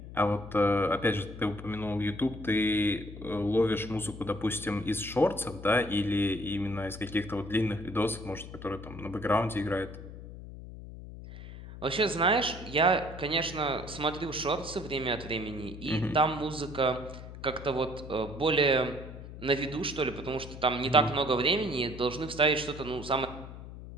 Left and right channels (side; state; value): left; noise; hum, 13 dB below the sound